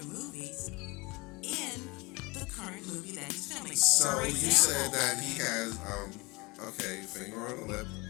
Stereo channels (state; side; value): quieter; right; 25.2 dB